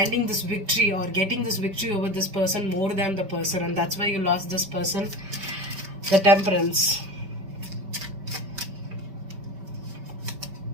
this victory, or getting this victory over this person more than the person, and that's why you lost this person. The Temperance.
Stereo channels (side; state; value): left; late; 5.2 ms